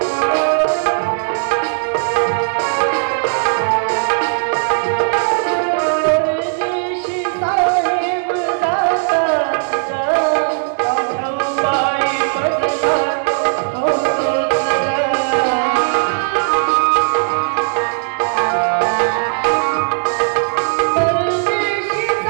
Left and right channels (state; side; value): silent; left; digital silence